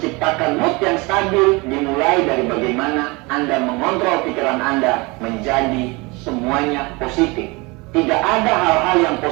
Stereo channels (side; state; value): left; quieter; 26.0 dB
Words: mood yang stabil dimulai dari bagaimana Anda mengontrol pikiran Anda menjadi semuanya positif. Tidak ada hal-hal yang